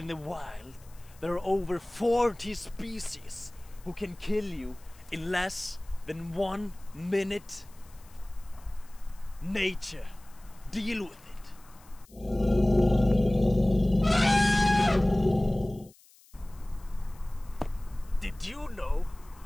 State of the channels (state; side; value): noise; left; hiss, 27 dB below the sound